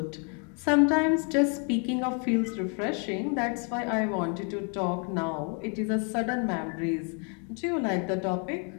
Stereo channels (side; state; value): right; quieter; 39.0 dB